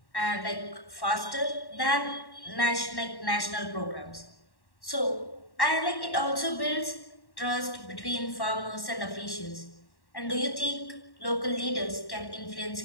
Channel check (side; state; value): right; late; 1.1 ms